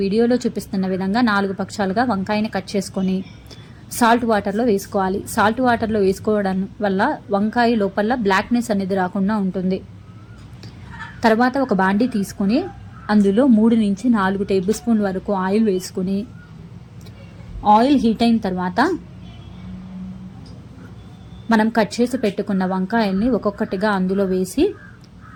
వీడియోలో చూపిస్తున్న విధంగా 4 పక్షాలుగా వంకాయని కట్ చేసుకొని సాల్ట్ వాటర్లో వేసుకోవాలి. సాల్ట్ వాటర్లో వేసుకోవడం వల్ల వంకాయ లోపల బ్లాక్నెస్ అనేది రాకుండా ఉంటుంది. తర్వాత ఒక బాండీ తీసుకొని అందులో 3 నుంచి 4 టేబుల్ స్పూన్ వరకు ఆయిల్ వేసుకుని ఆయిల్ హీట్ అయిన తర్వాత మనం కట్ చేసి పెట్టుకున్న వంకాయల్ని ఒక్కొక్కటిగా అందులో వేసి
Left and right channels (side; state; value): both; identical; correlation 1.00